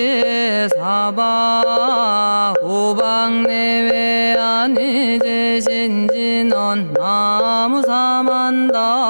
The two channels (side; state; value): both; inverted; correlation -1.00